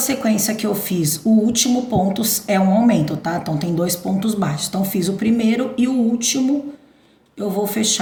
que eu fiz, o último ponto é um aumento, tá? Então, tem 2 pontos baixos. Então, fiz o primeiro e o último eu vou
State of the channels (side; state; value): both; identical; correlation 1.00